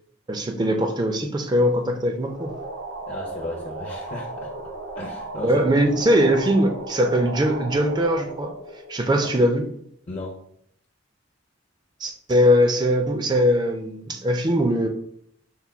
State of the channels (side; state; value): both; normal; correlation 0.55